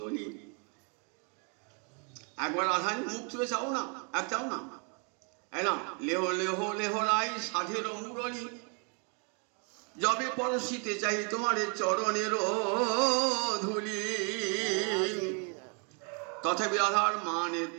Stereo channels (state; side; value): quieter; left; 37.3 dB